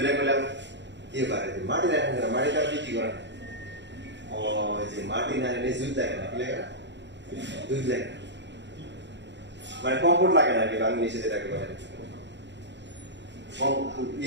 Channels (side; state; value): left; late; 0.52 ms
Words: গেলাম কি পারে মাটি রাখেন কেন, মাটি তারা বিক্রি করে না। ও যে মাটি না এনে দুধ লাগে না, কি লাগে না, দুধ লাগে না, মানে কমফোর্ট লাগে না আর কি বাংলাদেশে যেটাকে বলে,